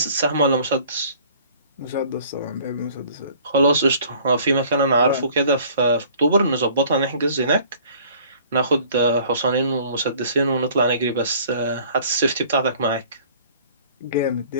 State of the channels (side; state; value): both; inverted; correlation -0.53